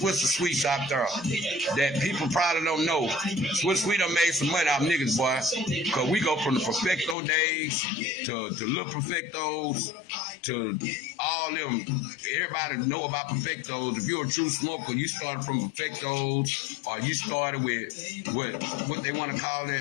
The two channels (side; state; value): right; drops out; at 7.2 s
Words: and Sweets out there that people probably don't know. Swiss Sweet done made some money out of niggas, boy, cause we go from the Perfecto days to Little Perfectos to all them. Everybody know about Perfectos. If you're a true smoker, you started from Perfectos, or you started with what they want to call